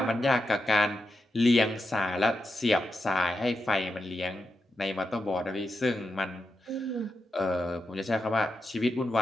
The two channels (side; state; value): both; normal; correlation 0.87